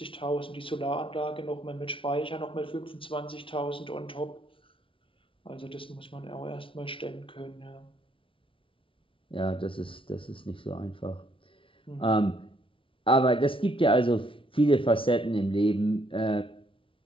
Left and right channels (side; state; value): right; late; 0.25 ms